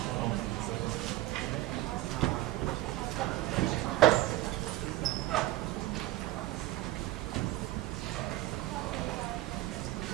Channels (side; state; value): left; quieter; 16.7 dB